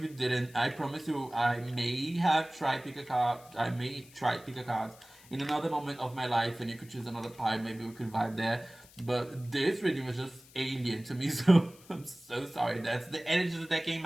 you didn't. I promise you, I may have tried pick a card. I may try pick a card in another moment of my life, and you could choose another part. Maybe we could vibe there. But this reading was just alien to me, so I'm so sorry. That's the energy that came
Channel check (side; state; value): left; noise; hiss, 23 dB below the sound